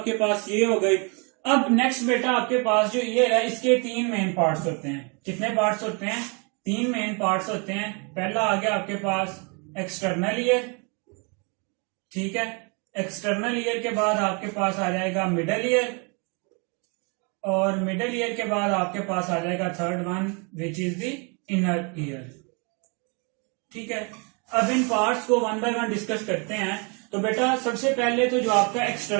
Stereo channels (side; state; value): left; quieter; 33.7 dB